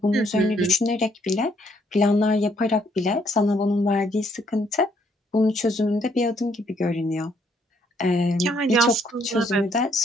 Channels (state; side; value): normal; both; correlation 0.69